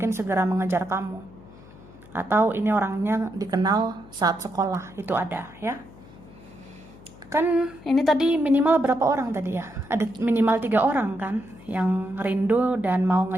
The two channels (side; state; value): left; noise; hum, 21 dB below the sound